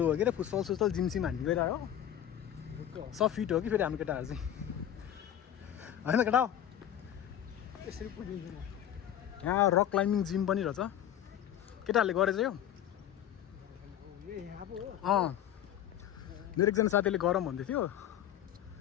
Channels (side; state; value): right; quieter; 10.8 dB